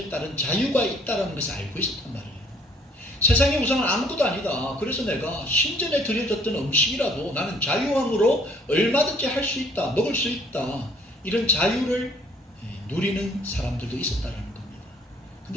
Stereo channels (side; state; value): both; normal; correlation 0.60